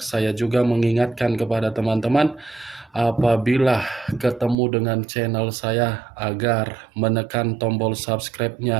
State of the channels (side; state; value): left; drops out; at 4.5 s